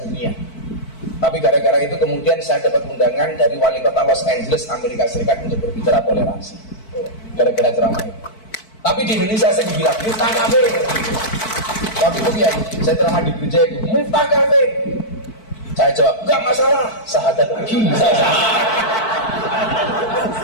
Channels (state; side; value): late; right; 4.6 ms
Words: Tapi gara-gara itu kemudian saya dapat undangan dari wali kota Los Angeles, Amerika Serikat untuk berbicara toleransi. Gara-gara ceramah itu. Tapi di Indonesia saya dibilang, Miftah kafir. Waktu itu ya, saya ceramah di gereja itu, Miftah kafir. Saya jawab, enggak masalah, sahadat lagi.